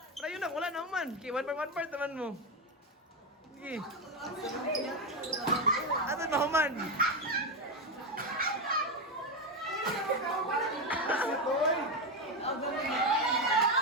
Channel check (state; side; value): normal; both; correlation 0.10